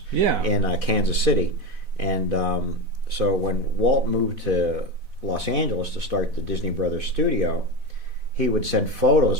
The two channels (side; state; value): left; late; 4.1 ms